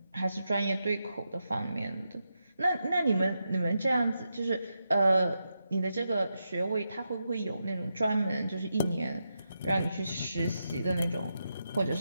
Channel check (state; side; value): inverted; both; correlation -0.86